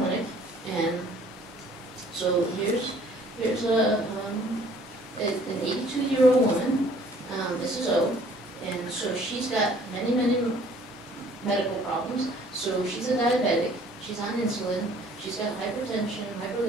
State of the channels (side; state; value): both; normal; correlation 0.56